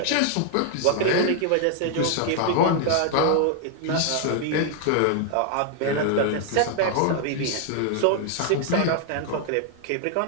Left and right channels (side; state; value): both; different; correlation 0.00